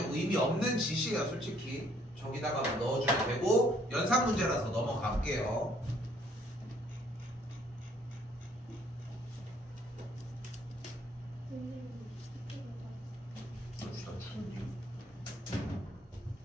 의미 없는 짓이에요. 솔직히 저기다가 넣어주면 되고 연산 문제라서 넘어갈게요.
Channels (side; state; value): both; normal; correlation 0.64